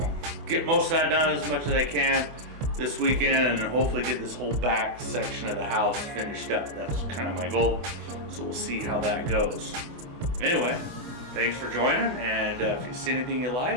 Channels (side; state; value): left; late; 24 ms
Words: get most of that done as much as I can this weekend, and hopefully get this whole back section of the house finished up. That's kind of my goal, so we'll see how that goes. Anyway, thanks for joining, and if you see anything you